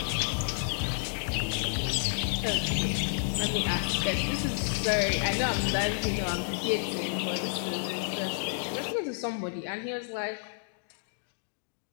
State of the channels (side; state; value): right; silent; digital silence